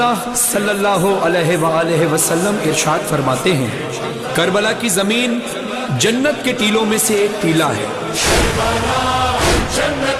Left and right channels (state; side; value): identical; both; correlation 1.00